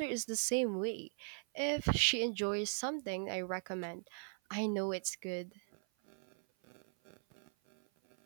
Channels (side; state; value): left; silent; 52 dB below the other